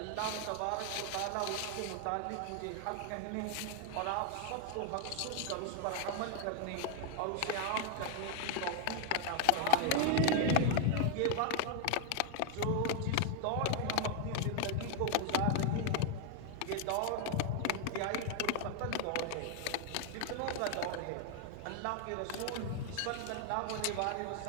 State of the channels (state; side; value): different; both; correlation 0.00